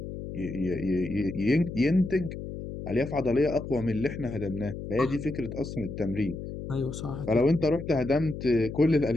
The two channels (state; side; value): noise; left; hum, 8 dB below the sound